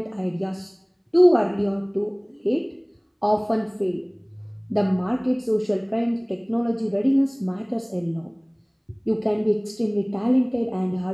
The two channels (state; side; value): identical; both; correlation 1.00